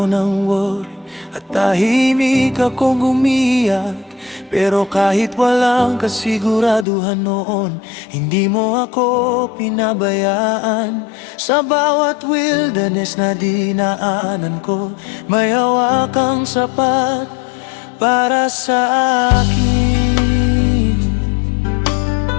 ng worry at tahimik akong umiyak. Pero kahit walang kasiguraduhan noon, hindi mo ako pinabayaan. Sa bawat wilderness na dinaanan ko, may hawak kang sapat para sa akin.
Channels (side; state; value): right; drops out; at 6.9 s